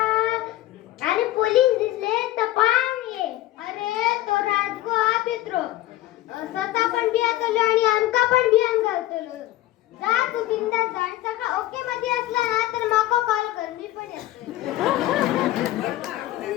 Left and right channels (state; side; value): quieter; right; 15.5 dB